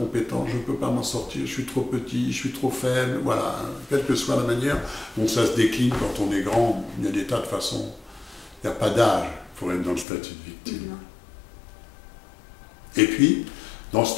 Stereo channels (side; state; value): right; drops out; at 10.1 s